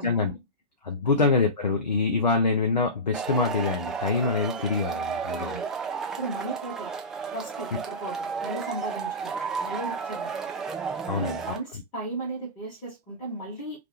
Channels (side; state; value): both; normal; correlation -0.19